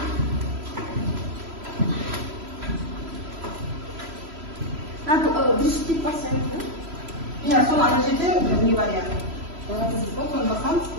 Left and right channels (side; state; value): left; late; 3.0 ms